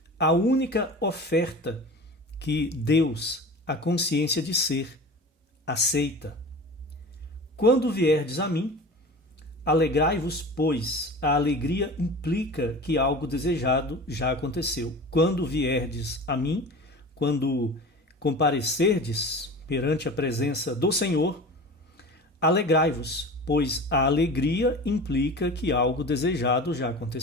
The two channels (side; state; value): both; normal; correlation 0.35